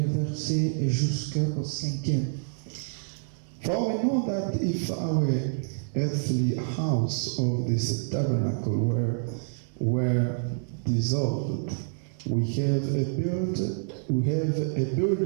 jusqu'au 5e. For we know that if our earthly house of this tabernacle were dissolved, we have a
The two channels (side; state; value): left; silent; digital silence